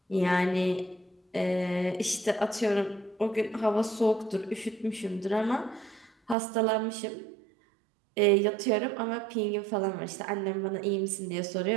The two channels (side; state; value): left; drops out; at 6.4 s